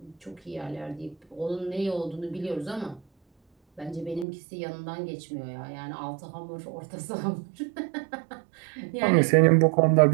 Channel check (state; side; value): drops out; left; at 4.2 s